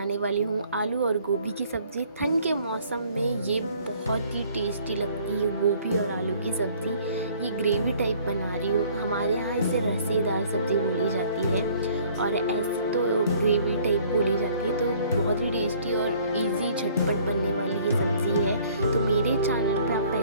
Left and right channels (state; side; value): inverted; both; correlation -0.57